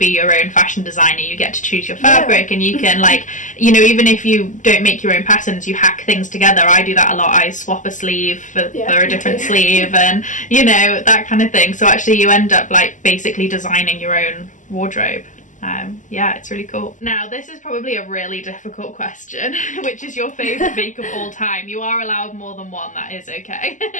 your own fashion designer. You get to choose your fabric, and you can, like, you know, even if you don't make your own patterns, you hack things together. I do that a lot. I swap a sleeve for a different sleeve, and, you know, that kind of thing. So actually you end up, like, basically designing your own wardrobe. Yeah, it's really cool. Now, this is probably a really difficult question. Which is your favourite make of all time? You are allowed more than one, that is okay.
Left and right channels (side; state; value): right; late; 0.37 ms